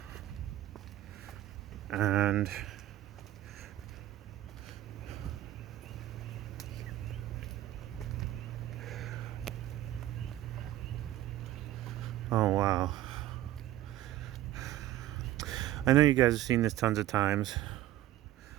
oh wow. I know you guys have seen this tons of times,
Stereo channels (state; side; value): quieter; left; 14.2 dB